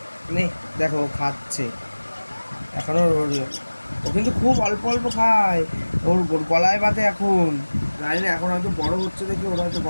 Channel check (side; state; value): both; inverted; correlation -1.00